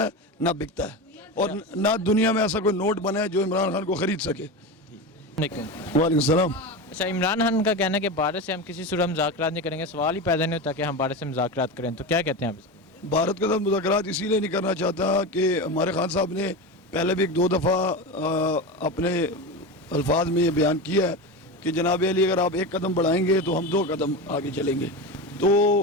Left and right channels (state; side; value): normal; both; correlation 0.22